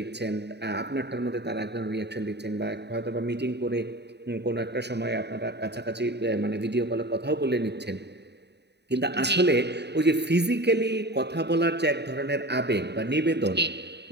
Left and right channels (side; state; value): left; late; 0.49 ms